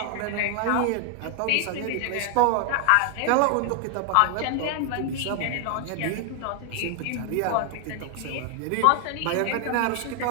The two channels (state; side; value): different; both; correlation 0.00